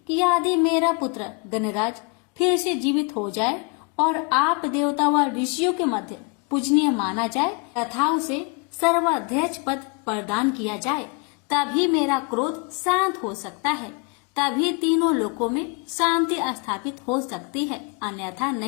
कि यदि मेरा पुत्र गणराज फिर से जीवित हो जाए और आप देवता व ऋषियों के मध्य पूजनीय माना जाए तथा उसे सर्वाध्यक्ष पद प्रदान किया जाए, तभी मेरा क्रोध शांत हो सकता है। तभी तीनों लोकों में शांति स्थापित हो सकती है, अन्यथा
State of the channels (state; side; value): quieter; right; 32.5 dB